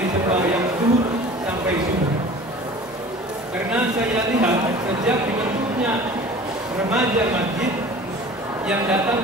sembahyang zuhur sampai subuh. Karena saya lihat sejak dibentuknya remaja masjid yang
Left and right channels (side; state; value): both; normal; correlation 0.42